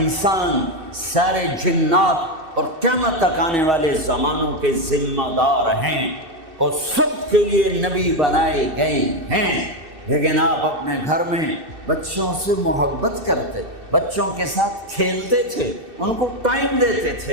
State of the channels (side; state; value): left; late; 2.6 ms